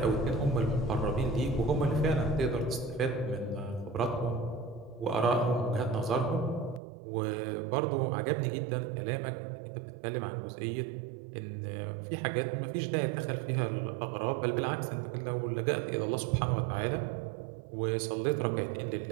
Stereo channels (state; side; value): drops out; left; at 6.8 s